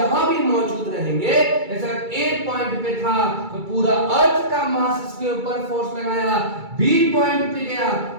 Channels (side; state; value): left; late; 2.3 ms